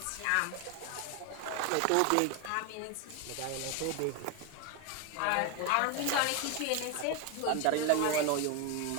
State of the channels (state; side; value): different; both; correlation 0.01